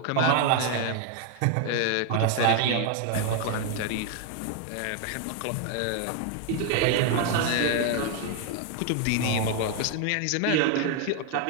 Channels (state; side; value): different; both; correlation 0.00